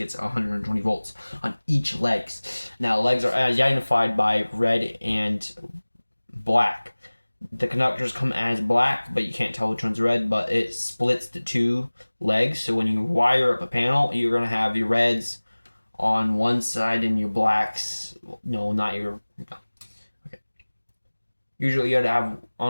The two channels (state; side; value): inverted; both; correlation -1.00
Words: 120 volts on each legs. Now legs are identified by red and black. The conductors come as black, but you can't tell which one's red, but it splits the 2 legs. So when you wire up a panel, you're going to have your reds on one side and your blacks, no, not your, okay. Usually you would have,